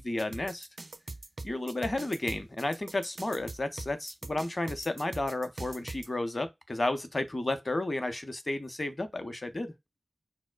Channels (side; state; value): both; normal; correlation 0.96